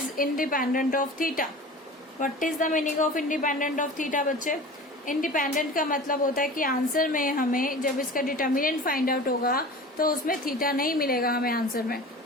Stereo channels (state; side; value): normal; both; correlation 0.37